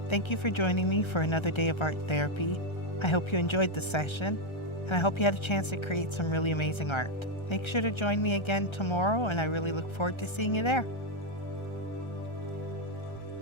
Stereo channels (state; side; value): late; right; 1.3 ms